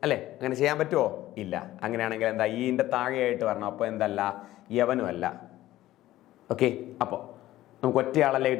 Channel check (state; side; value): quieter; right; 15.2 dB